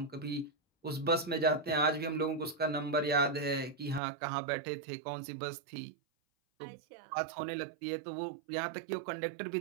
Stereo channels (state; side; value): drops out; left; at 4.0 s